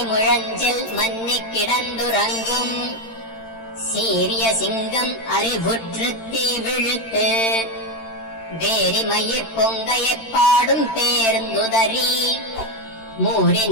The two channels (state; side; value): late; right; 13 ms